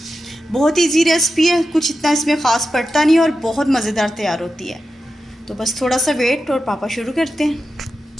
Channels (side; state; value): both; normal; correlation 0.90